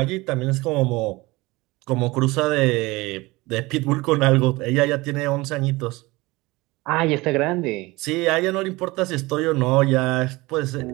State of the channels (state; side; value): quieter; left; 21.9 dB